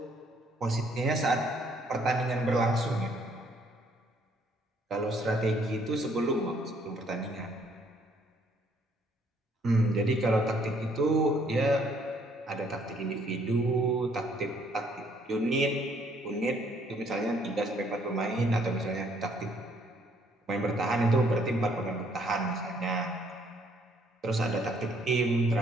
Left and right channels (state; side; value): normal; both; correlation 0.65